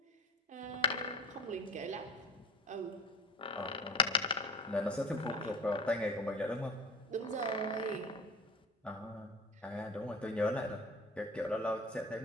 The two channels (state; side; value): normal; both; correlation 0.37